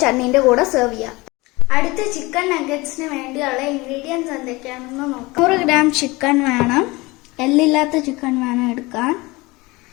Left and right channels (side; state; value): right; quieter; 22.7 dB